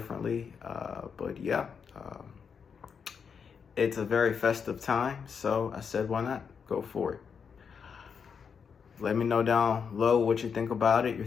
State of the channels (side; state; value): right; quieter; 6.4 dB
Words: it's a very festive time, so I said, why not go for it? Let me know down below what you think about it, your